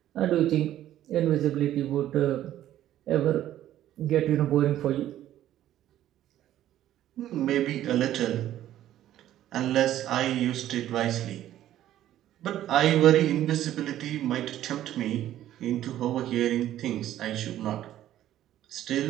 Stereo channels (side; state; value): left; quieter; 12.6 dB